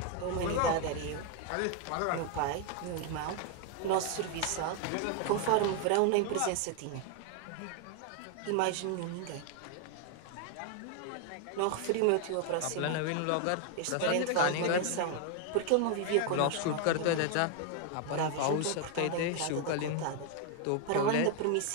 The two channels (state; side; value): different; both; correlation 0.01